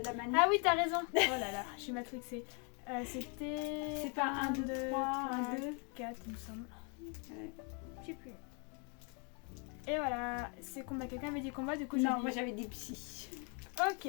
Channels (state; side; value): quieter; right; 36.5 dB